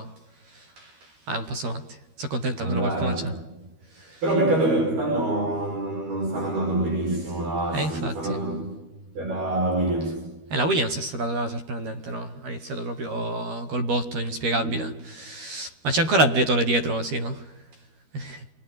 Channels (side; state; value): left; late; 13 ms